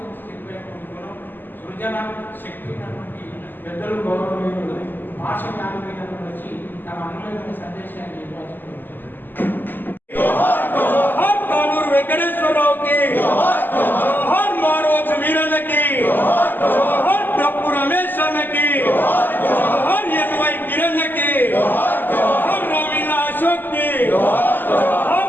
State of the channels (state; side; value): late; right; 0.091 ms